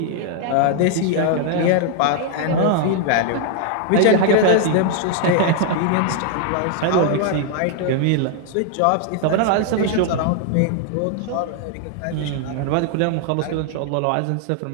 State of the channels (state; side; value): different; both; correlation 0.00